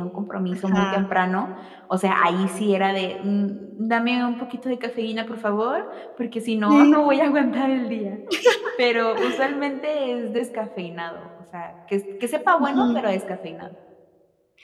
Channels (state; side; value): identical; both; correlation 1.00